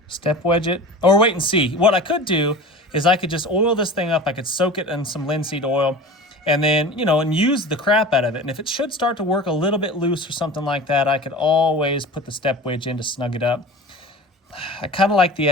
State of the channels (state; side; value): normal; both; correlation 0.36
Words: Step wedge it? Or wait and see. What I could do is I could just oil this thing up. I could soak it in some linseed oil and then, and use the crap out of it. And if it should start to work a little bit loose or something like that, I could always put the step wedge in to snug it up. I kind of like the